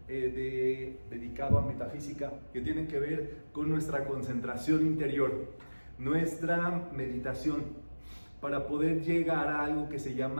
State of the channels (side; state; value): both; inverted; correlation -1.00